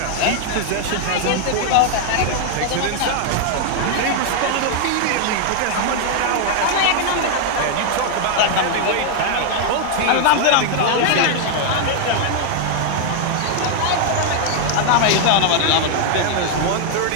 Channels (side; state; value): both; different; correlation 0.00